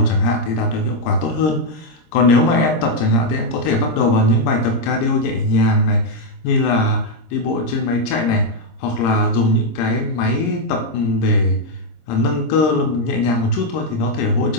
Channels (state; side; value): late; right; 26 ms